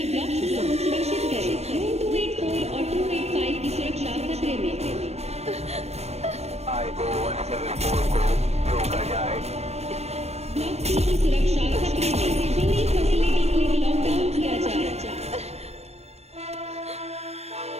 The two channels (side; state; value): left; late; 0.31 ms